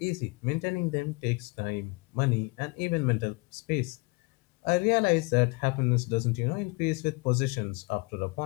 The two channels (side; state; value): right; quieter; 27.7 dB